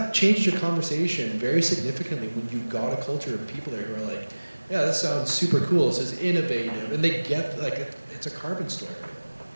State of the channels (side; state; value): both; inverted; correlation -1.00